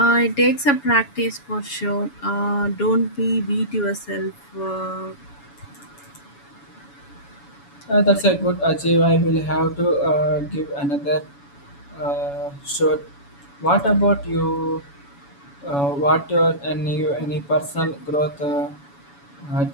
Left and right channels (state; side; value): late; right; 7.1 ms